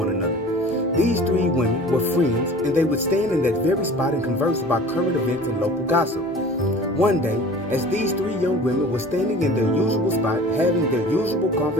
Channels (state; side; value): normal; both; correlation 0.43